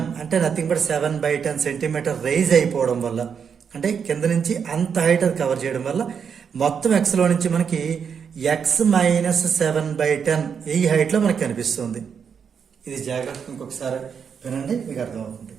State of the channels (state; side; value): quieter; left; 6.9 dB